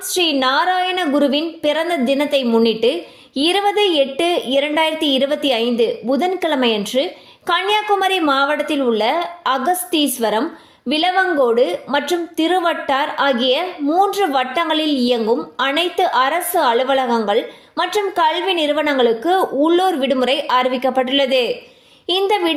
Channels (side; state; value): both; identical; correlation 1.00